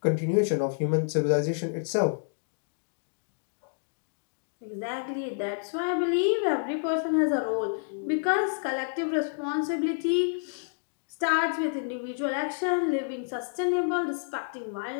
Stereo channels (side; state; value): right; silent; digital silence